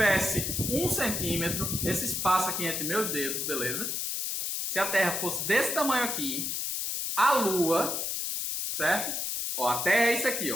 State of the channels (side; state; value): left; noise; hiss, 2 dB below the sound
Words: 1 centímetro, esse espaço aqui entre meus dedos, beleza? Se a Terra fosse desse tamanho aqui, a Lua, certo? Ó, a Terra é isso aqui,